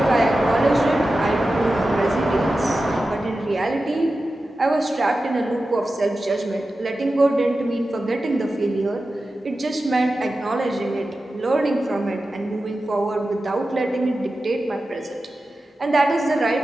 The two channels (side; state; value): both; normal; correlation 0.93